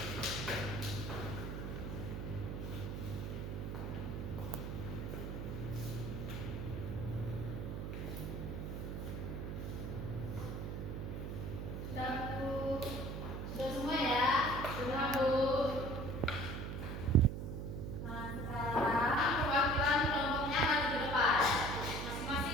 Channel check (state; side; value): noise; right; hum, 5 dB below the sound